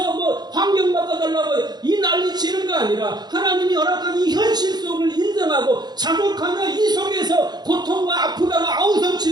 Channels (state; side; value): late; left; 0.20 ms